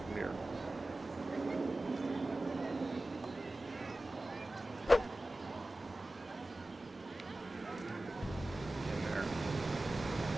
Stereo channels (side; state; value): both; normal; correlation 0.95